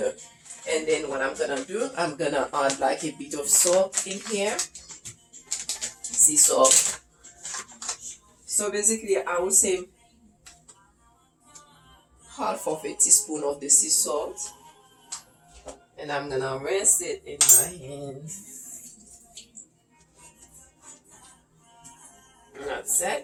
And then what I'm gonna do, I'm gonna add like a bit of salt in here, sea salt. So basically I would say half of a teaspoon of the sea salt, and I'm gonna rinse it in my hand. That's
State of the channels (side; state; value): both; identical; correlation 1.00